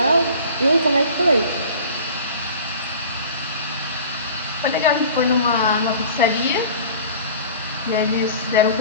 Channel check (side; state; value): both; inverted; correlation -0.42